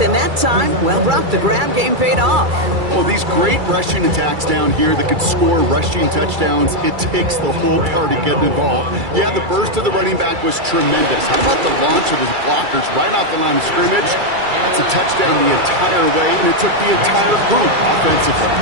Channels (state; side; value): late; left; 2.3 ms